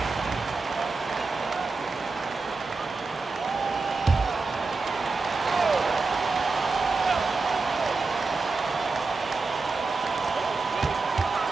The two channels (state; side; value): quieter; left; 4.0 dB